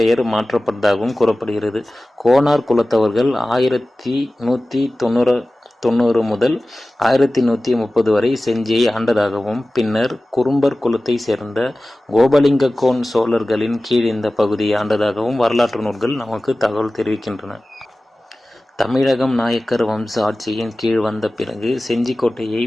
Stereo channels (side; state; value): both; normal; correlation 0.97